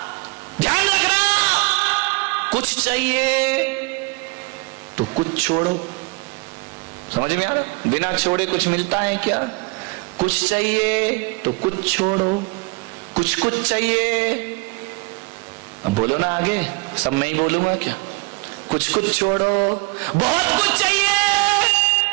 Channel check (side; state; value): left; quieter; 29.0 dB